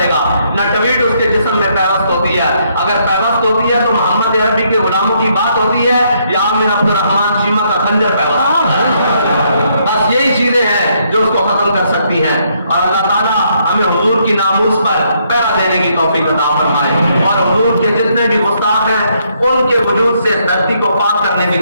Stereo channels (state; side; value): inverted; both; correlation -0.72